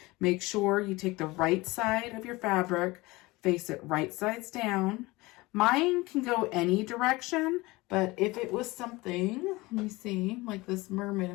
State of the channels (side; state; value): right; quieter; 21.7 dB